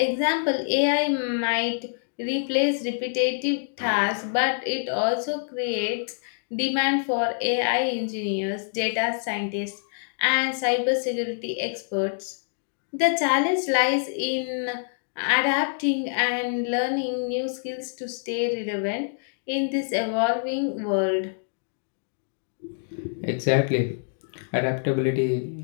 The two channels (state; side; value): silent; right; digital silence